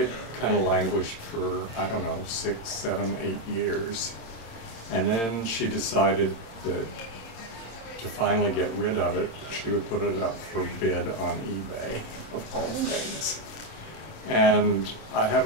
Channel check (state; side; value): late; right; 26 ms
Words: kind of languished for, I don't know, 6, 7, 8 years. And then she decided that to finally get rid of it, she would put it up for bid on eBay, of all things. And I